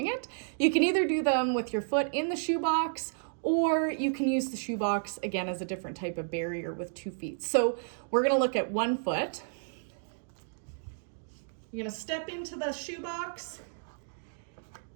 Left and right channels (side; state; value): left; silent; digital silence